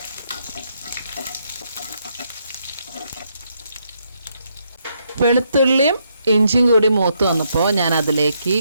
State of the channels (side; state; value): both; inverted; correlation -0.76